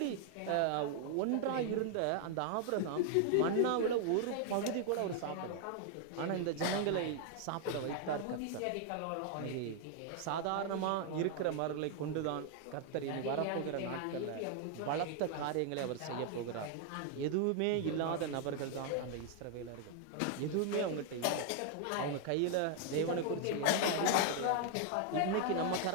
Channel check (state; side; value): different; both; correlation 0.00